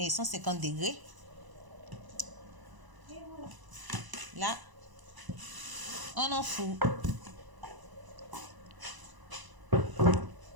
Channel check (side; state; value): left; late; 1.0 ms